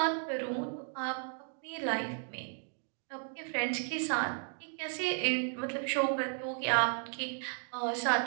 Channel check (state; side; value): silent; left; 55 dB below the other